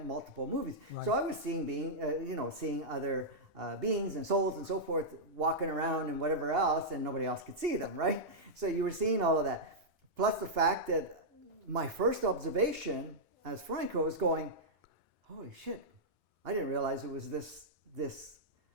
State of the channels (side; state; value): both; normal; correlation -0.08